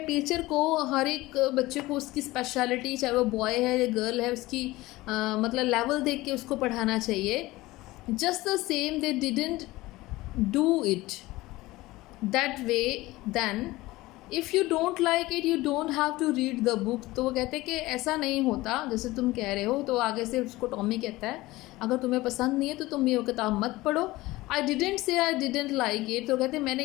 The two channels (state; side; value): quieter; right; 19.2 dB